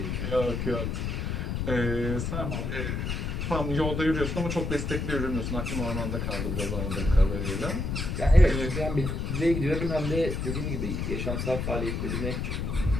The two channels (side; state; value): left; noise; rumble, 2 dB below the sound